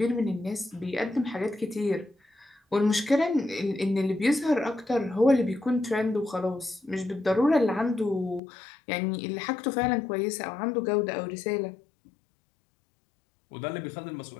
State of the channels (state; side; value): drops out; right; at 8.4 s